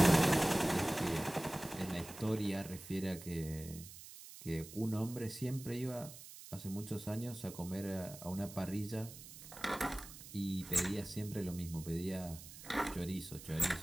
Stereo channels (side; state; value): right; noise; hiss, 15 dB below the sound